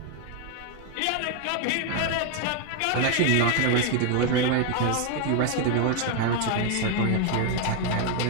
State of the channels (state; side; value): different; both; correlation 0.01